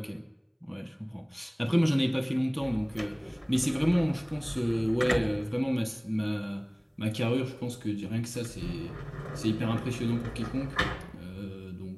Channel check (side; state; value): both; identical; correlation 1.00